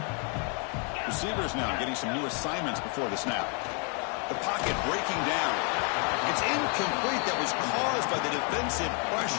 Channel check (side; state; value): right; quieter; 37.8 dB